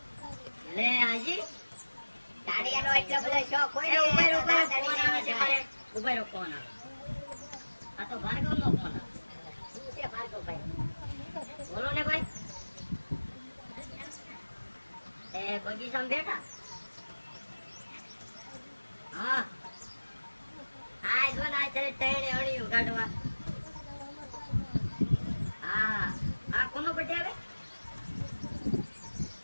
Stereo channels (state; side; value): inverted; both; correlation -1.00